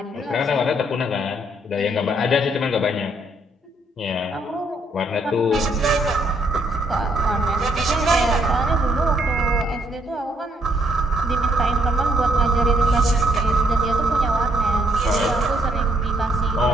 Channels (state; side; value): normal; both; correlation 0.71